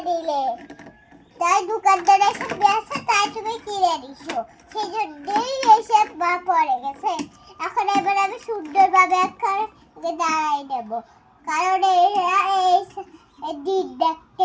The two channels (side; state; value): both; identical; correlation 1.00